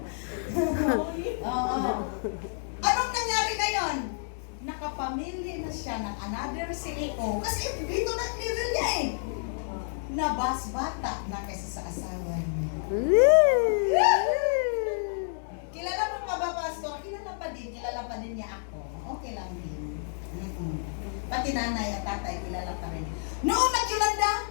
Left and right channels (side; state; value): right; silent; 58 dB below the other